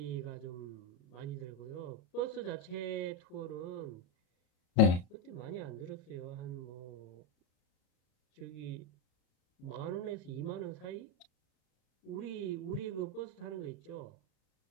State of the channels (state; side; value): late; right; 33 ms